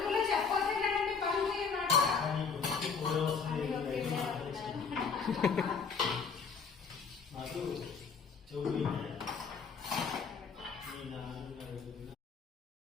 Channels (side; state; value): right; quieter; 5.6 dB